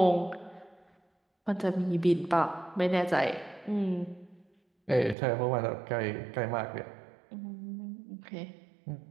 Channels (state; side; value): drops out; left; at 5.2 s